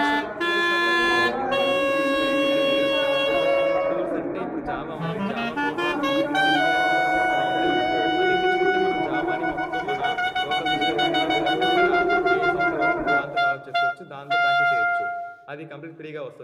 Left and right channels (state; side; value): identical; both; correlation 1.00